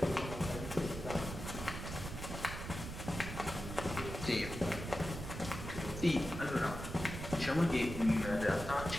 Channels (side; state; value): right; noise; rumble, 7 dB below the sound